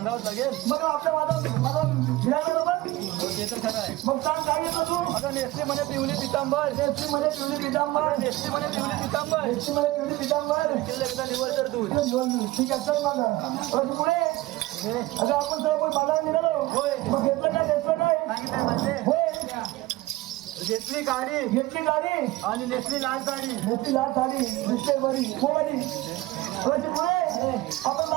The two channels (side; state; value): left; quieter; 18.4 dB